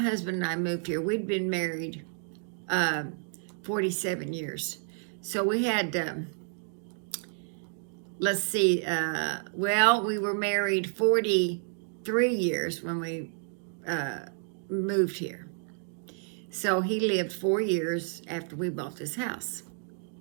and I moved here, we'd been married 47 years. So we had, let's see, well, we were married 43 years when we moved here. So he lived 4 years after we bought this house.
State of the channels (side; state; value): left; silent; 58 dB below the other